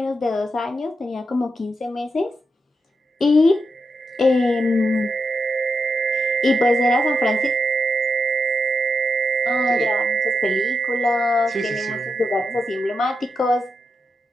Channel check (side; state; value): both; normal; correlation 0.85